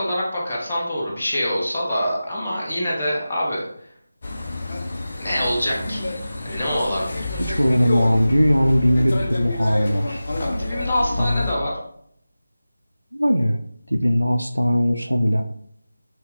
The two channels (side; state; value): both; inverted; correlation -0.95